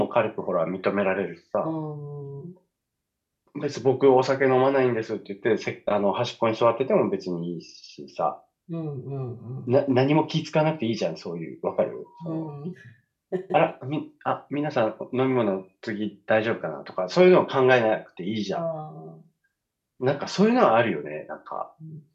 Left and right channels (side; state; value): both; identical; correlation 1.00